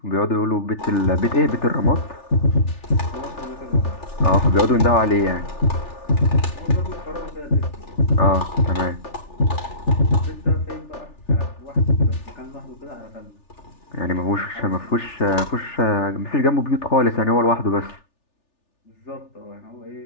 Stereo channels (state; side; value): late; right; 3.4 ms